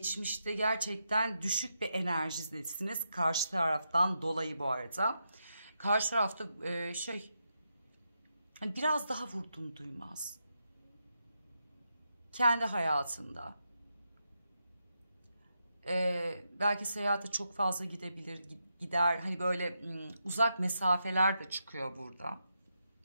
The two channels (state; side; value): inverted; both; correlation -0.84